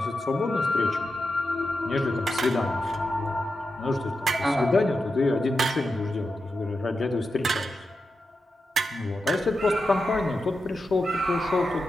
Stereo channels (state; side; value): normal; both; correlation 0.89